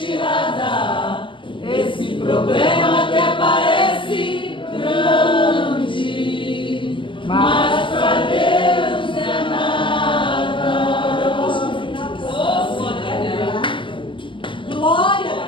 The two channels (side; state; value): right; late; 0.25 ms